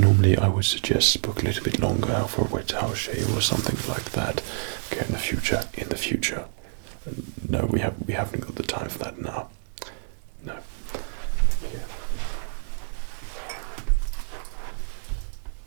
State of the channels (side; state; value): left; silent; 60 dB below the other